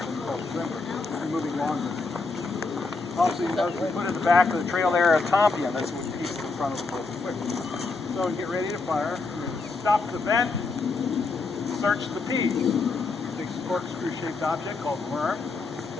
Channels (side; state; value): right; quieter; 4.0 dB